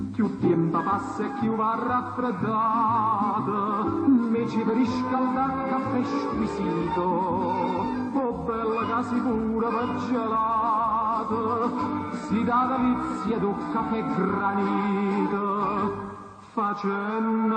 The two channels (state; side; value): identical; both; correlation 1.00